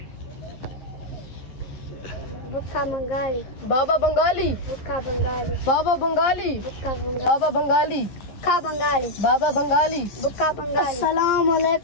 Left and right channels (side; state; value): right; late; 11 ms